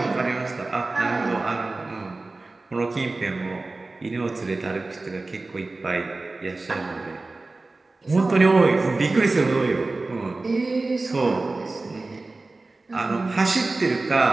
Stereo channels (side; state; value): left; quieter; 3.3 dB